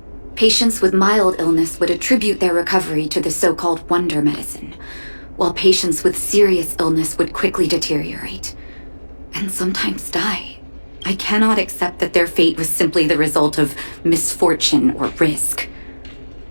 Patients with mild illness would attribute their recovery to the so-called wonder medicine, while patients with serious illness would quickly deteriorate, and sometimes die. I cannot accept that their fate was simply the result of misfortune or risk.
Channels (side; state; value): both; inverted; correlation -1.00